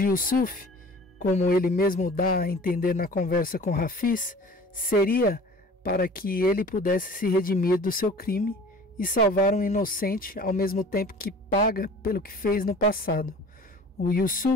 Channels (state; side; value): normal; both; correlation 0.44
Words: Yusuf como ele mesmo dá a entender na conversa com Hafiz, seria para que ele pudesse se redimir do seu crime e salvar um inocente ao mesmo tempo que paga pelo que fez no passado. O